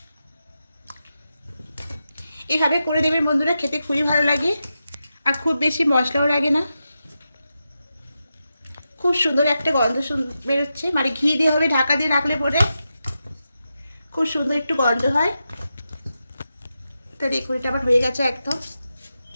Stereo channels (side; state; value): both; inverted; correlation -0.89